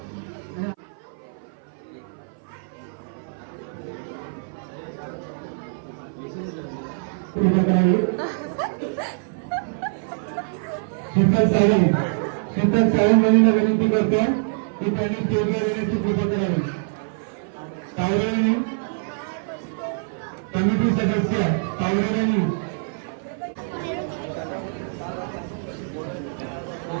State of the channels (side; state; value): left; silent; 56 dB below the other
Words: शीतल सावंत यांना विनंती करतो की त्यांनी स्टेजवर येण्याची कृपा करावी. तावरेंनी कमिटी सदस्य तावरेंनी